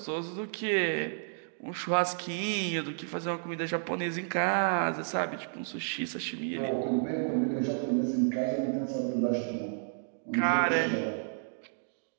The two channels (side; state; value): left; silent; digital silence